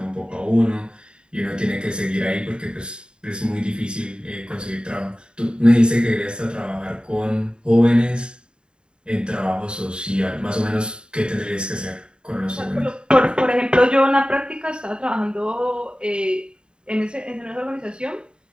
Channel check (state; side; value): late; left; 0.051 ms